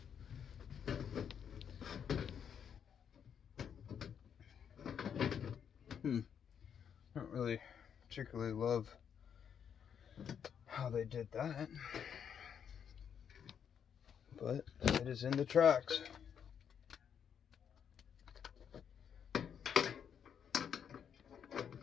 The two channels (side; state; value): right; quieter; 8.0 dB